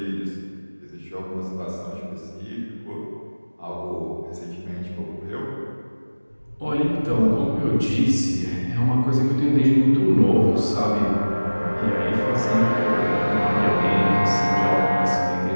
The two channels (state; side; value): inverted; both; correlation -1.00